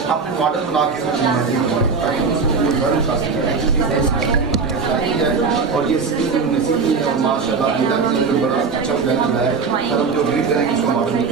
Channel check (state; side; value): quieter; left; 5.0 dB